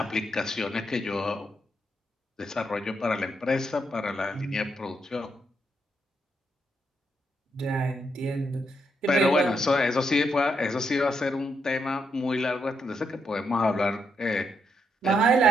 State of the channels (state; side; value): normal; both; correlation 0.79